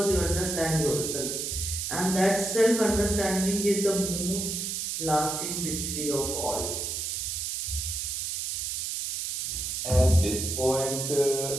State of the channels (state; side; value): noise; right; hiss, 3 dB below the sound